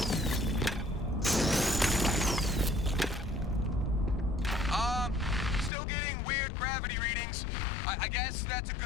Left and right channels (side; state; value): right; drops out; at 5.7 s